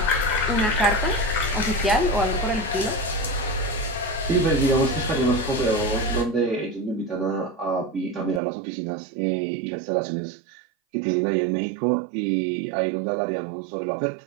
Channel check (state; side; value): drops out; left; at 8.4 s